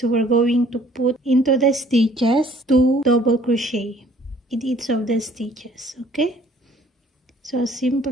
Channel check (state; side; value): normal; both; correlation 0.57